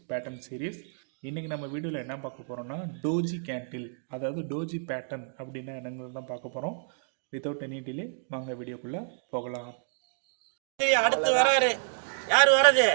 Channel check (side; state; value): left; silent; digital silence